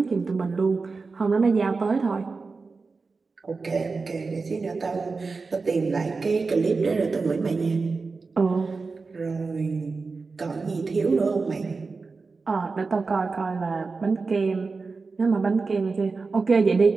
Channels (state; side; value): quieter; left; 4.3 dB